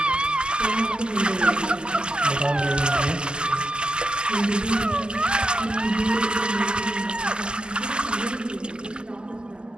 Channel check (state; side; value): late; left; 0.048 ms